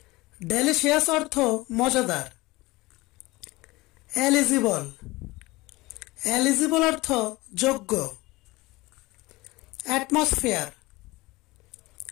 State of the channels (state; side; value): quieter; right; 21.1 dB